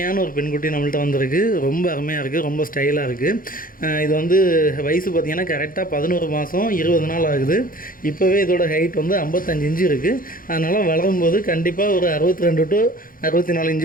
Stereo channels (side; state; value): right; late; 0.41 ms